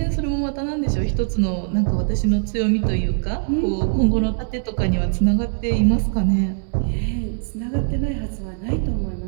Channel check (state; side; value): silent; left; digital silence